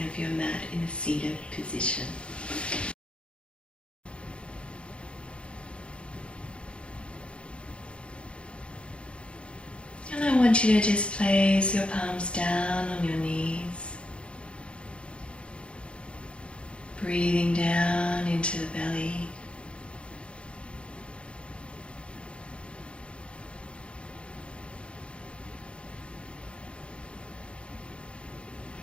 of your mat in a seated position. And I want you to just place your palms down on your knees, breathing down into the belly.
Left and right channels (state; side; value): late; right; 0.058 ms